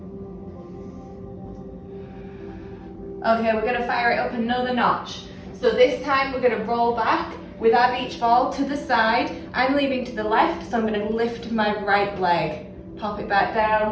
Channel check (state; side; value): identical; both; correlation 1.00